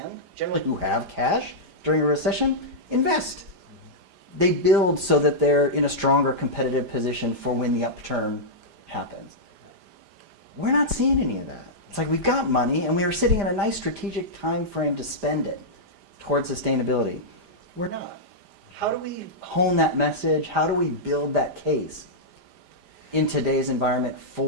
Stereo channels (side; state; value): left; late; 5.0 ms